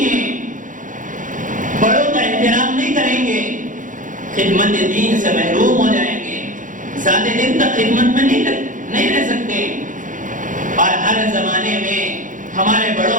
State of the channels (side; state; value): left; late; 0.38 ms